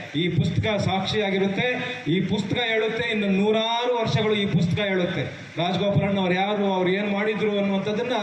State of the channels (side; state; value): both; identical; correlation 1.00